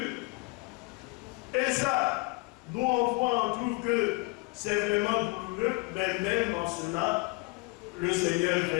Et ça, nous on voit, on trouve que c'est vraiment douloureux, mais même en cela, le Seigneur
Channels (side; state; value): right; quieter; 26.3 dB